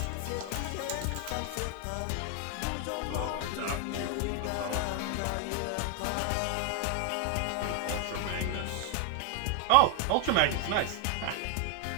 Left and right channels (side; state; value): both; different; correlation 0.00